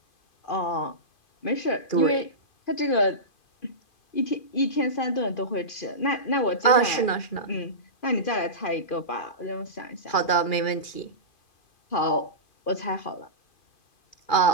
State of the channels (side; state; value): right; late; 2.4 ms